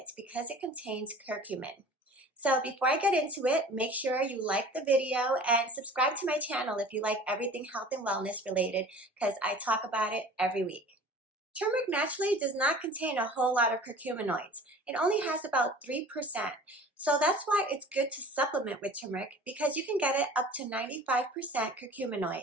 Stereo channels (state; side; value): normal; both; correlation 0.44